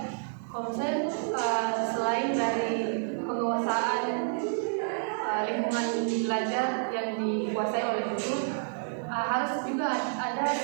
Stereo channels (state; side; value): silent; left; digital silence